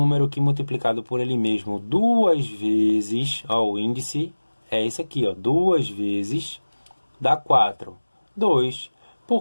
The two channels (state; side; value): inverted; both; correlation -1.00